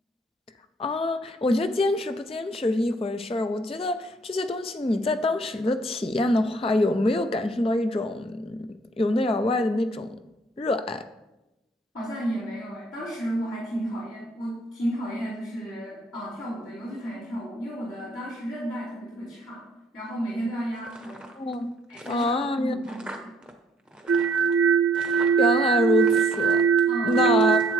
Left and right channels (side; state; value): both; normal; correlation 0.62